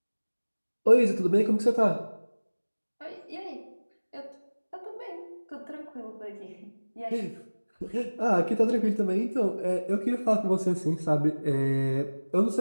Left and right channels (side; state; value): both; inverted; correlation -1.00